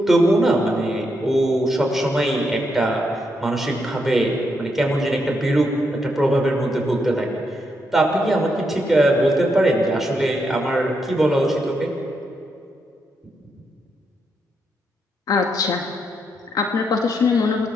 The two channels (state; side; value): normal; both; correlation 0.80